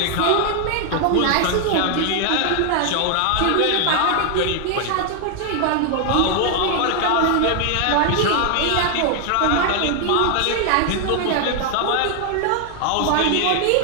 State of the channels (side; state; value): both; different; correlation 0.00